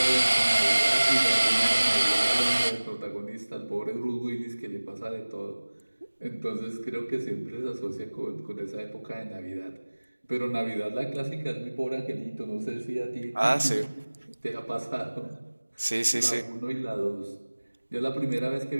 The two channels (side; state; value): both; inverted; correlation -1.00